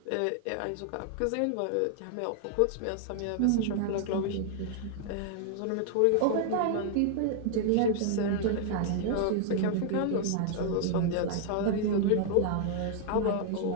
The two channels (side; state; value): both; different; correlation 0.00